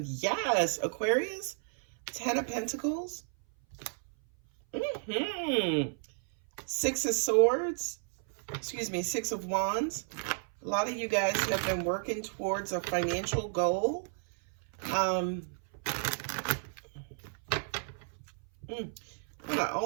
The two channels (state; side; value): silent; left; 56 dB below the other